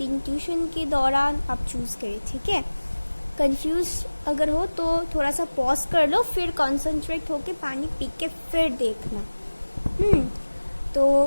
ट्यूशन के दौरान आप चूज़ करें, ठीक है। कंफ्यूज अगर हो तो थोड़ा सा पॉज कर लो, फिर कॉन्सेंट्रेट होके पानी पी के फिर देखना। तो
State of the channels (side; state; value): both; inverted; correlation -1.00